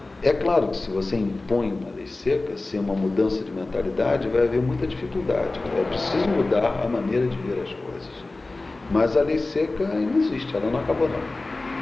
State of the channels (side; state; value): right; quieter; 3.2 dB